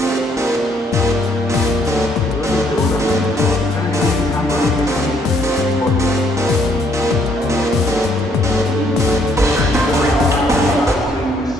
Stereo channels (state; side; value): normal; both; correlation 0.68